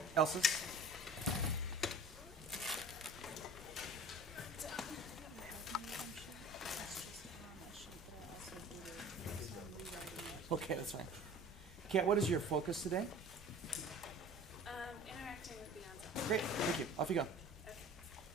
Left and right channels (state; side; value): normal; both; correlation 0.42